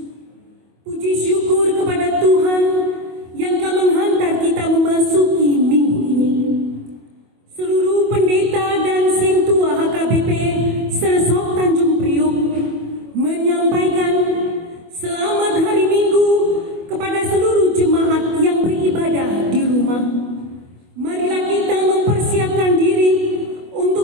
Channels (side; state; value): left; late; 24 ms